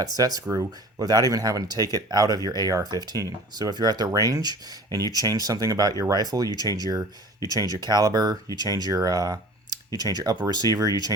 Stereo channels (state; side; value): normal; both; correlation 0.42